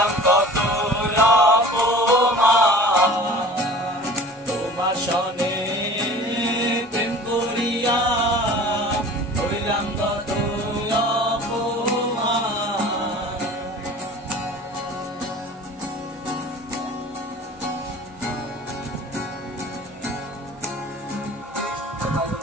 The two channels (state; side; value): normal; both; correlation 0.43